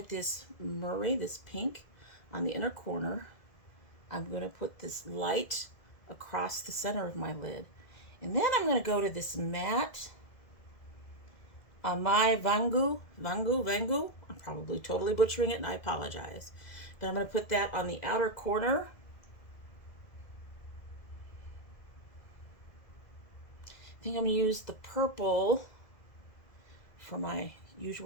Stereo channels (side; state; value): right; late; 2.0 ms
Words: this Murray, this pink on the inner corner. I'm going to put this light across the center of my lid. And then I'm going to go to this matte my Vangu. I'm probably totally butchering it and I apologize. But I'm going to put that on the outer corner. I think I'm going to use the purple for my